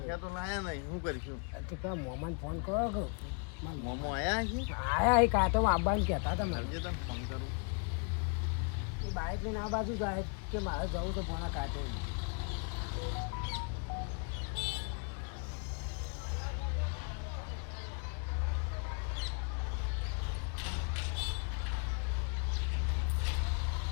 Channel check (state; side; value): quieter; right; 39.9 dB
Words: તો લાયા નહીં શું કરીશું મોમાન ફોન કરો કે મોમો આયા છે આયા એ કાંટો આવવાનું કહેતા હતા મને સમજે તને ફોન કરું એ બાઇક લઈને આ બાજુ જાય કે મારે જવું તો ભણા કાંટો